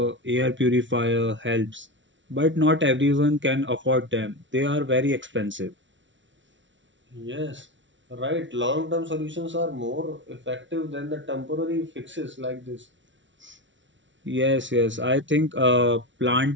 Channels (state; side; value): late; left; 0.55 ms